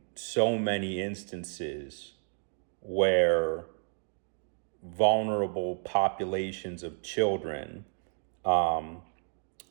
so many instances where vulnerable populations of children,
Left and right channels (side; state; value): left; silent; 57 dB below the other